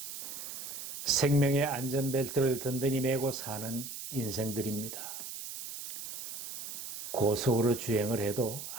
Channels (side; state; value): right; noise; hiss, 8 dB below the sound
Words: 생명의 안전벨트를 든든히 메고 사는 인생들입니다. 고속으로 주행을 해도